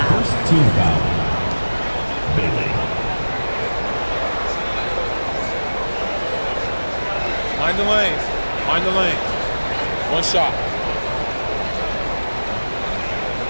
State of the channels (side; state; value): both; inverted; correlation -1.00